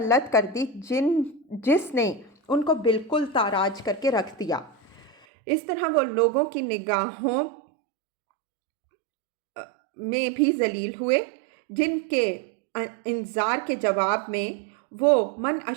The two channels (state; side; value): drops out; left; at 5.2 s